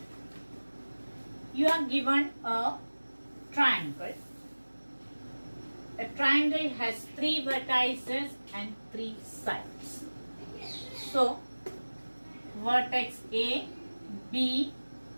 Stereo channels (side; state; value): both; inverted; correlation -1.00